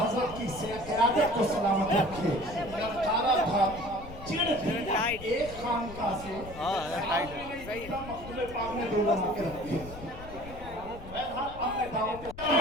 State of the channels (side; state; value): left; noise; rumble, 14 dB below the sound